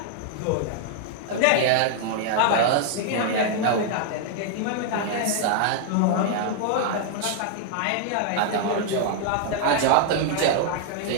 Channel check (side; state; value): both; different; correlation 0.00